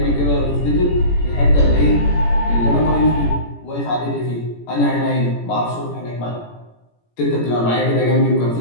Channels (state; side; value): late; right; 17 ms